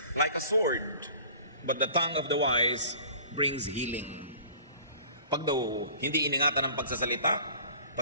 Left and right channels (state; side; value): inverted; both; correlation -0.47